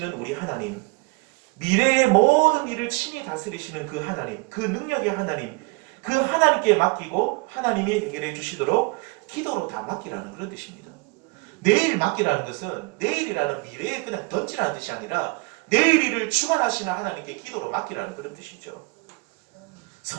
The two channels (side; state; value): left; quieter; 28.2 dB